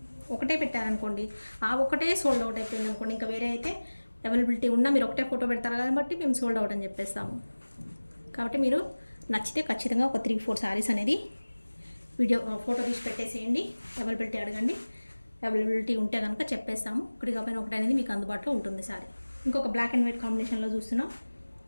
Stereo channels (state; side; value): inverted; both; correlation -1.00